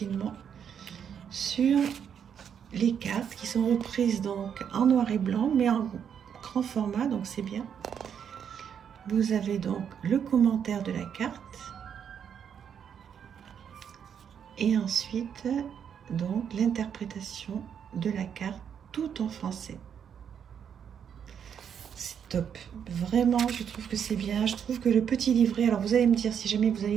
sur les cartes qui sont reprises donc en noir et blanc, mais en grand format, donc c'est bien. Vous avez donc le commentaire de la carte. Et ensuite, donc, l'interprétation de la carte tout en français. C'est top. Vraiment, je trouve que c'est bien. Je trouve que le petit livret, alors vous allez me dire si jamais vous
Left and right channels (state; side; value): quieter; left; 8.0 dB